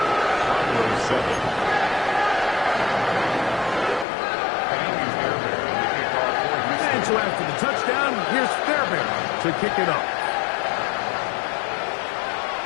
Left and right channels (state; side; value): drops out; right; at 4.0 s